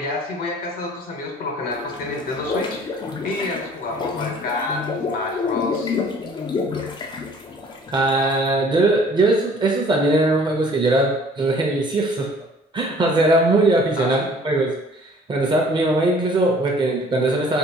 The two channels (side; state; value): both; normal; correlation 0.53